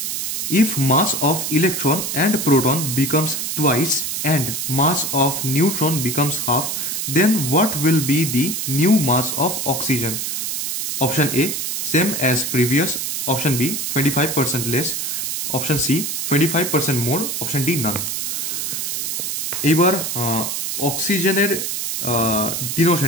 If mass of electron and proton becomes twice and mass of neutron becomes half, then what will be the new mass of oxygen? Option A same as previous, option B 25% less, option C 25% more, option D none. এইবার অক্সিজেনের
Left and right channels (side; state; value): right; noise; hiss, 2 dB below the sound